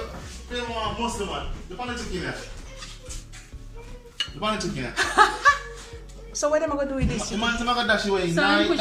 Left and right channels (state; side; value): identical; both; correlation 1.00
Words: So what am I going to do with this? The man gonna dash away